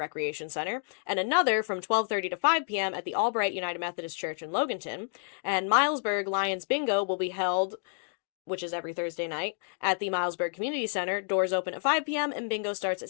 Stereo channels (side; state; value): right; silent; digital silence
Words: Center, and another from 12:30 to 5 p.m. at the Albright United Methodist Church in Loganton. And Milesburg Lions Bingo will be held, which is every Thursday night, at the Milesburg Community Center. Doors open at 5 p.m. and bingo starts at